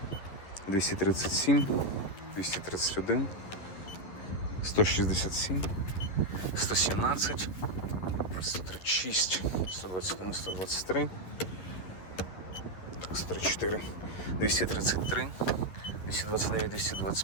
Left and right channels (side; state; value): right; late; 11 ms